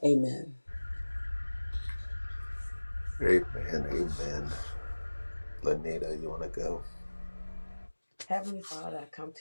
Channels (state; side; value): inverted; both; correlation -1.00